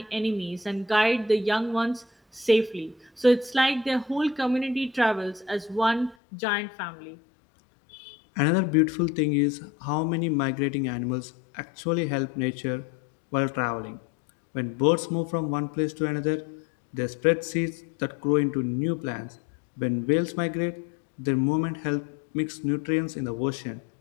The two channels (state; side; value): drops out; right; at 6.2 s